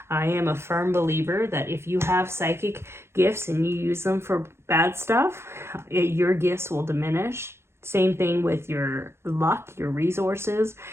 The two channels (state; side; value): late; left; 0.12 ms